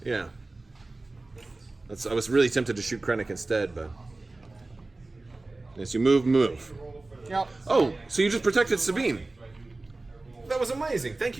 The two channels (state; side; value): quieter; left; 3.1 dB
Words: Yeah. I was really tempted to shoot Krennic instead, but yes, you move. Yep. Oh, so you just protected Sabine. That was amazing. Thank